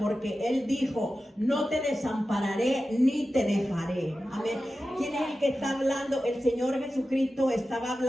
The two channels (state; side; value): normal; both; correlation 0.93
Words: Él dijo: no te desampararé ni te dejaré. Amén. ¿Quién es el que está hablando? El Señor Jesucristo estaba